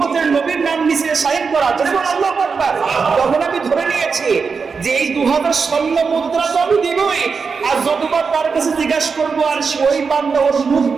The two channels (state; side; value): quieter; left; 5.2 dB